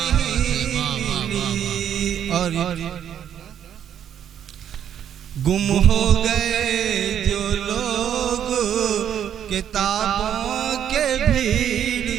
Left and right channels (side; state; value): left; quieter; 9.4 dB